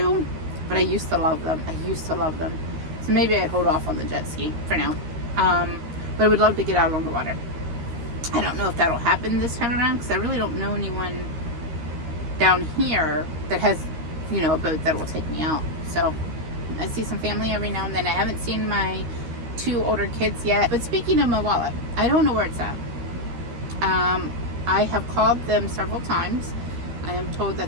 but I used to love them. I used to love them. So maybe I'd hold off on the jet ski for now. But I would love to get out on the water. I don't know if that'll happen this time around because I really don't know anyone down here that has, you know, a boat that will take me out. So I see some family every now and then. I haven't seen my 2 older kids yet. But speaking of my wallet, I don't know where it's at. I have called them several times. I am told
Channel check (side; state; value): left; late; 13 ms